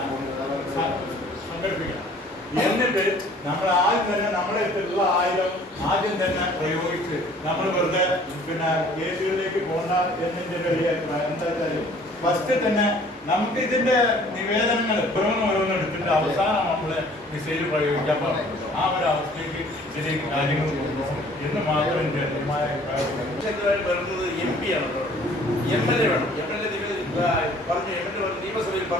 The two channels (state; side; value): normal; both; correlation 0.54